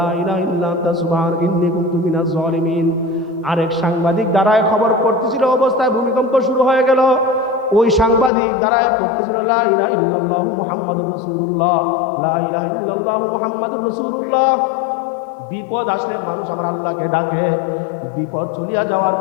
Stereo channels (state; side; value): drops out; right; at 8.3 s